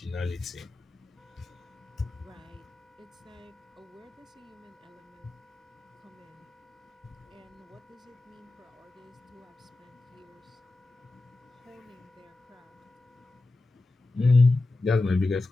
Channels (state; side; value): quieter; right; 3.1 dB